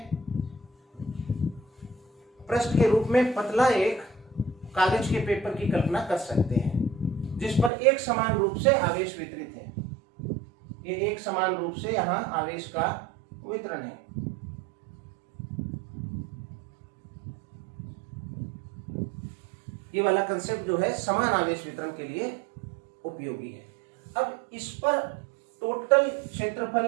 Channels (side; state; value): left; drops out; at 7.7 s